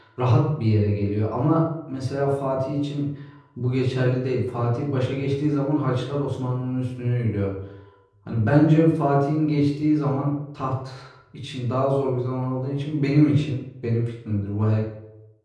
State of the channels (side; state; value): both; identical; correlation 1.00